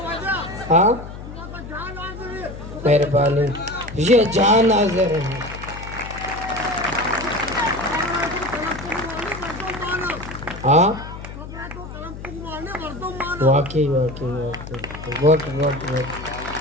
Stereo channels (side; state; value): left; noise; hum, 11 dB below the sound